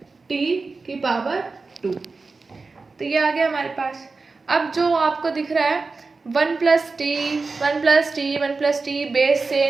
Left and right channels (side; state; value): left; quieter; 4.0 dB